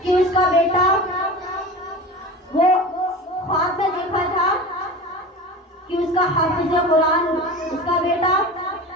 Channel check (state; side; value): normal; both; correlation 0.32